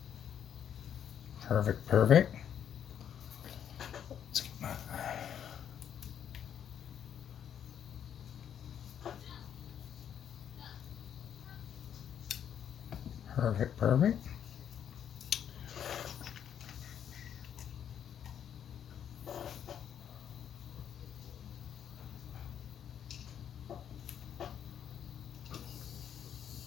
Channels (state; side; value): quieter; right; 9.1 dB